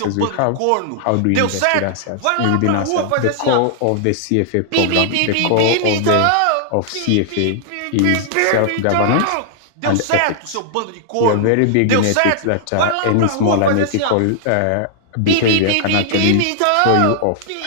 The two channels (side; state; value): both; different; correlation -0.01